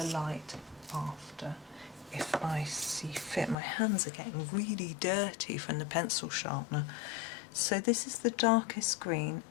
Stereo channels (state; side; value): drops out; right; at 3.6 s